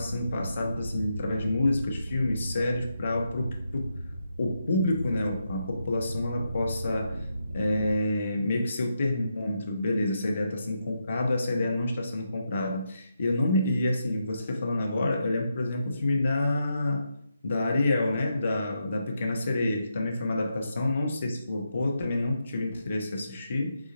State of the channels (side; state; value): both; inverted; correlation -0.83